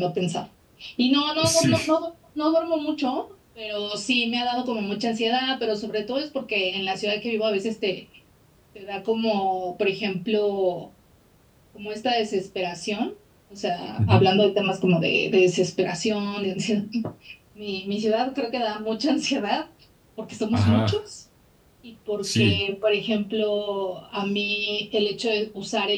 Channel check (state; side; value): identical; both; correlation 1.00